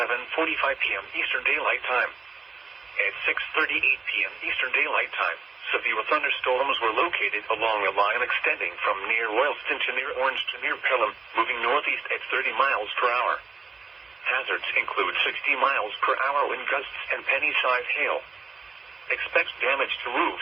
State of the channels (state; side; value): quieter; left; 4.6 dB